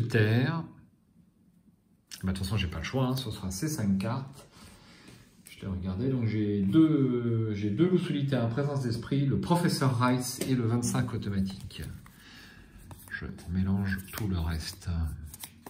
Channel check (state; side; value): identical; both; correlation 1.00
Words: Bah, de toute façon, j'ai pas le choix. Hein. Ce sera ces 5 cartes. Je l'ai regardé. Donc, j'ai deux loups solitaires en présence d'esprit, le professeur Rice et le 25 automatique. Je mélange tout le reste.